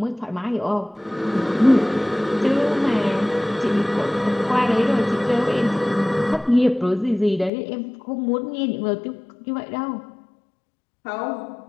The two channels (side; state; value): right; drops out; at 7.5 s